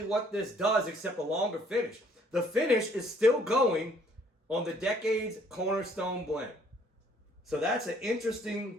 what this does, except a longer finish. The finish is still going on the Decades Cornerstone blend. So that's an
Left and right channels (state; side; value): normal; both; correlation 0.62